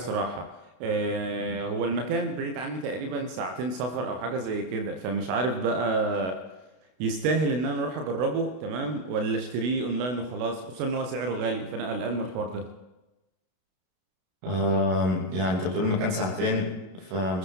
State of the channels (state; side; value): late; left; 32 ms